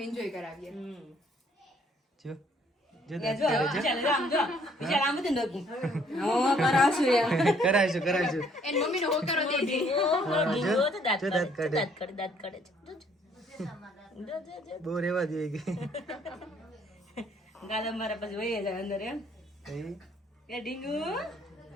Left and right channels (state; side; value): normal; both; correlation 0.64